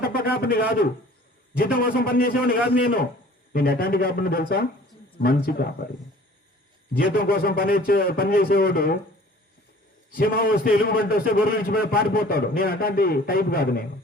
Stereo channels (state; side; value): normal; both; correlation 0.49